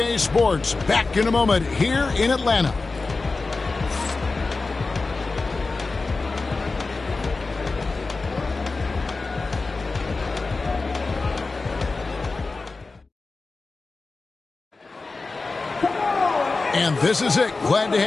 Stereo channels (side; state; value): right; quieter; 3.8 dB